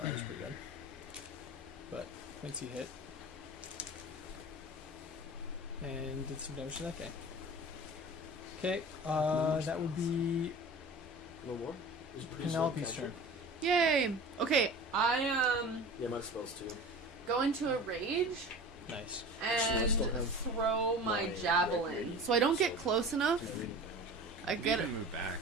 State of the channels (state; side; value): normal; both; correlation 0.37